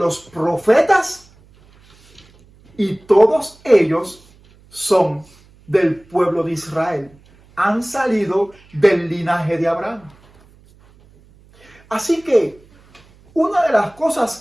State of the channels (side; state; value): right; noise; hum, 29 dB below the sound